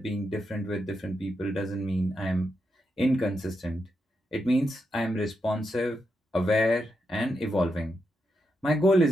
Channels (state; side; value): normal; both; correlation 0.84